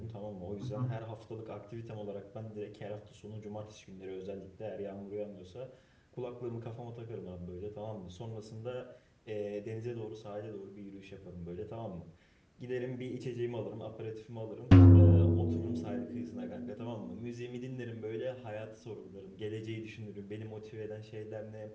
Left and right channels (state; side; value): identical; both; correlation 1.00